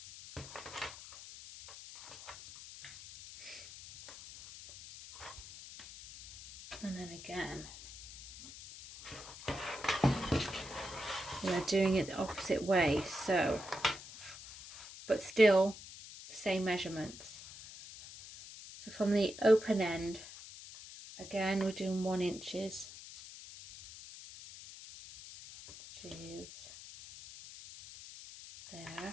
And then again, we're doing it the opposite way, so, but still the same measurements. So from the open end, again we're doing 1 inches, which is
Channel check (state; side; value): noise; left; hiss, 14 dB below the sound